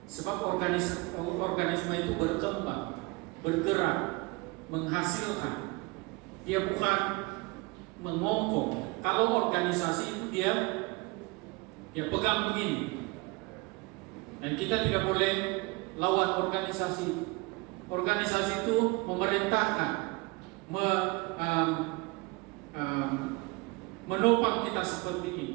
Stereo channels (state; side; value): quieter; left; 25.7 dB